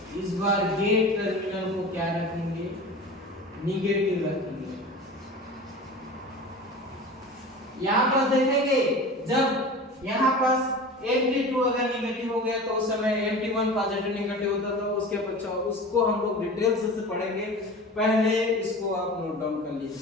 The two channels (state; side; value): normal; both; correlation 0.35